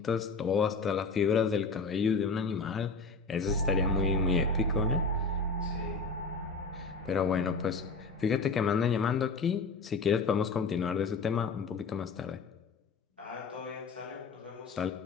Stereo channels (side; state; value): right; quieter; 4.3 dB